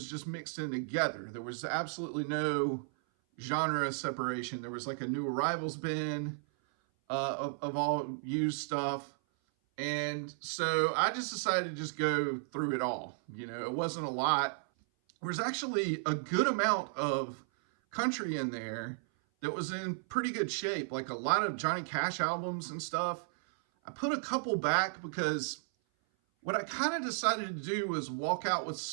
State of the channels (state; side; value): silent; left; 55 dB below the other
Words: just mixed in together. There was absolutely no genre separation. There was like a new arrivals bin of all used stuff. And so I just decided to just go through it all. It wasn't a lot. There was actually a good amount of country in there that was in pretty good shape, like a lot of Johnny Cash albums and stuff. I put a couple back because what I kind of decided to do was walk out with